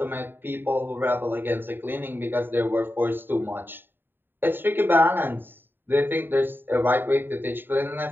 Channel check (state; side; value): late; left; 0.095 ms